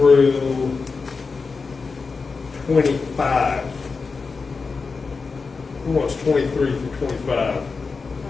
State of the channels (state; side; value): quieter; right; 4.6 dB